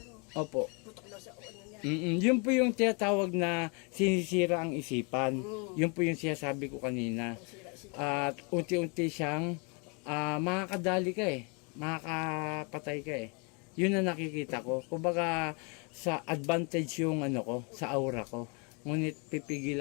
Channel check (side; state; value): right; quieter; 33.7 dB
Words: Opo. Putok daw sa ano niya. Yun po yung tinatawag na sinisira ang isipan. Yun po yung sinasabi ko kanina. At unti-unti siyang makakadali ka eh. Makakapatay ka eh. Yun na nakikita ko. Kumbaga sa advantage yung ano ko, sa aura ko. Ngunit